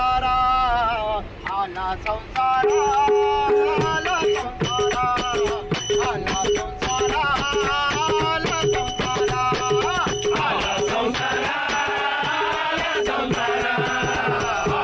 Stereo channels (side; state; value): both; identical; correlation 1.00